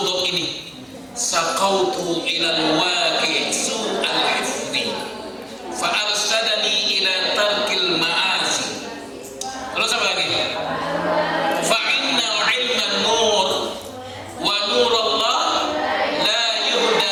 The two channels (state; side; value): identical; both; correlation 1.00